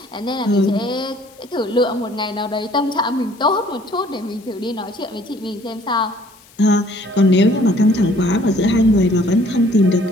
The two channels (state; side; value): noise; left; hiss, 27 dB below the sound